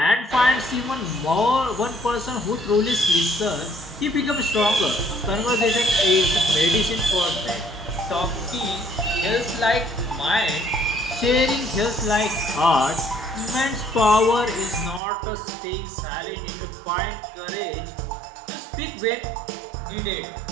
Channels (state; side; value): drops out; left; at 15.0 s